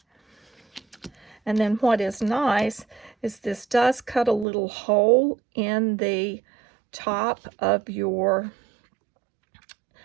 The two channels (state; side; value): drops out; left; at 4.5 s